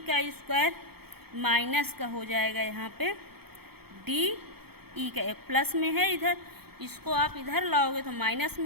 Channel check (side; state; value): left; late; 0.96 ms